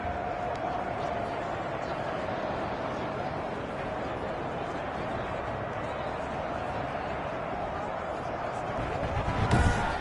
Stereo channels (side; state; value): both; identical; correlation 1.00